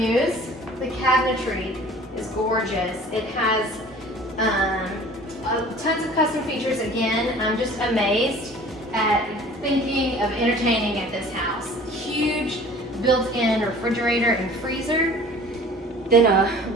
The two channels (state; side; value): normal; both; correlation 0.47